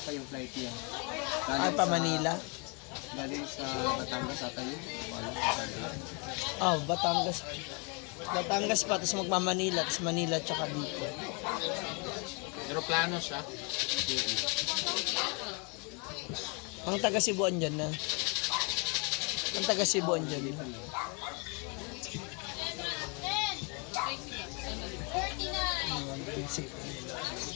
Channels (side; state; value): right; quieter; 33.8 dB